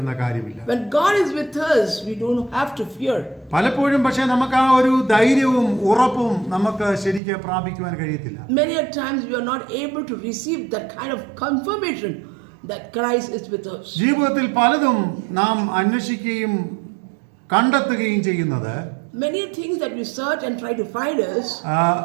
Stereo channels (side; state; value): left; drops out; at 7.2 s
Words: കാര്യമില്ല. When God is with us, we don't have to fear. പലപ്പോഴും പക്ഷേ നമുക്ക് ആ ഒരു ധൈര്യവും ഉറപ്പും നമുക്ക് ശരിക്കും പ്രാപിക്കുവാൻ കഴിയത്തില്ല. Many a times we are not able to receive that kind of confirmation that Christ is with us. ജീവിതത്തിൽ പലതും നാം അന്വേഷിക്കുകയും കണ്ടെത്തുകയും ചെയ്യുന്നത് Many things that we search and try to find us